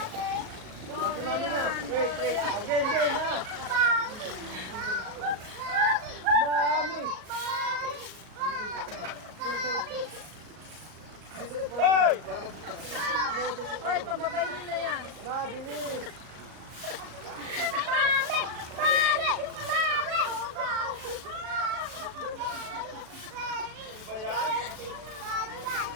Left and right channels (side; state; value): left; late; 37 ms